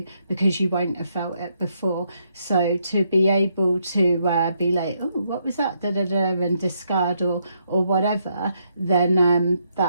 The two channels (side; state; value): both; inverted; correlation -0.76